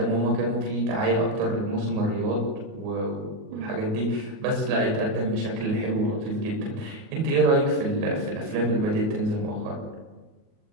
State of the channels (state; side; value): late; left; 37 ms